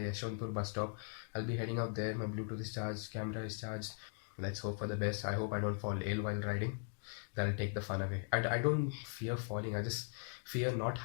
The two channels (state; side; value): silent; right; 51 dB below the other